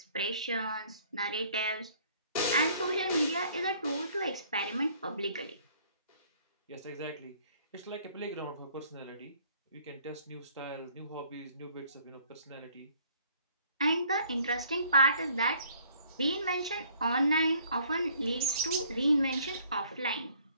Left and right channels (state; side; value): inverted; both; correlation -0.60